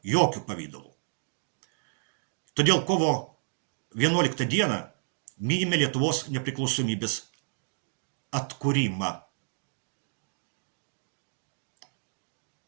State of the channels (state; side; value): silent; left; digital silence